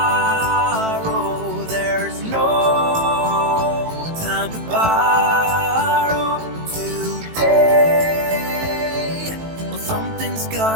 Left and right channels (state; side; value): late; left; 18 ms